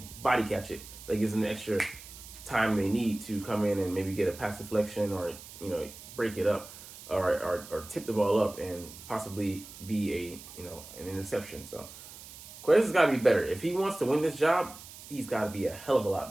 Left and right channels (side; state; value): right; noise; hiss, 16 dB below the sound